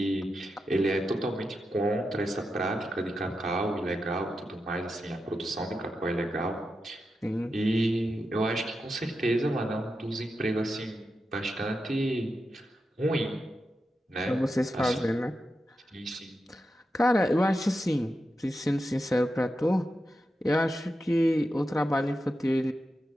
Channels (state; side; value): normal; both; correlation 0.89